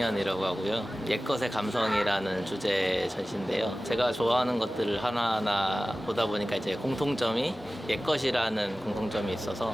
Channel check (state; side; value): normal; both; correlation 0.96